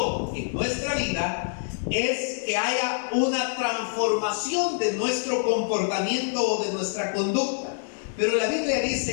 en nuestra vida es que haya una transformación de nuestro comportamiento o de nuestra conducta. Pero la Biblia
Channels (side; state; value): right; silent; digital silence